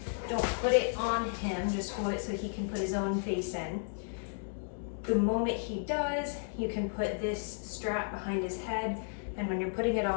Don't put it on him, just hold it so he can put his own face in. The moment he does, you can put this strap behind his head, and when you're putting it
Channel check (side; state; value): right; silent; digital silence